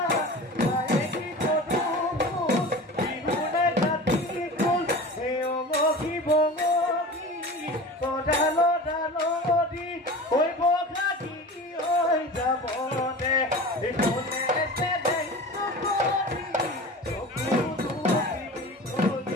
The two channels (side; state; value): both; normal; correlation 0.34